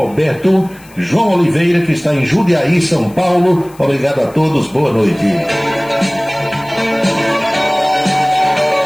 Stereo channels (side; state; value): left; noise; hiss, 25 dB below the sound